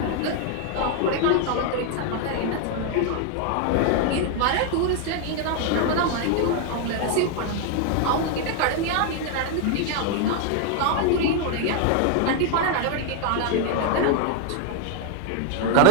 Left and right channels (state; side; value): different; both; correlation 0.01